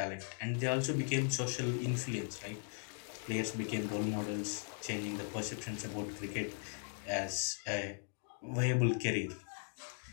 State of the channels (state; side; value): silent; right; 52 dB below the other